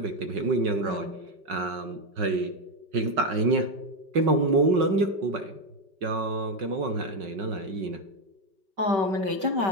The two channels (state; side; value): late; left; 5.4 ms